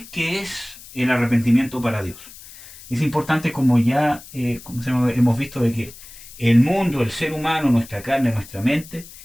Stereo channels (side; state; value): left; noise; hiss, 18 dB below the sound